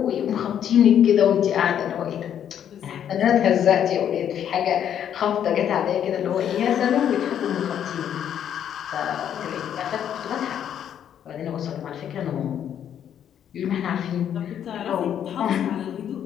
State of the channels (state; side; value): quieter; right; 9.5 dB